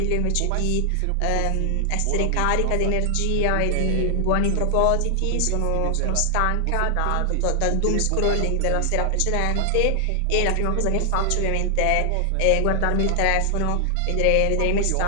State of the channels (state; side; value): different; both; correlation 0.00